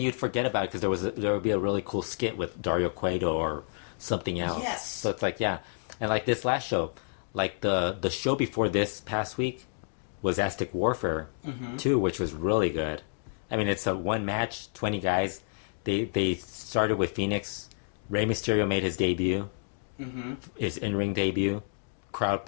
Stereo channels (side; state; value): right; silent; digital silence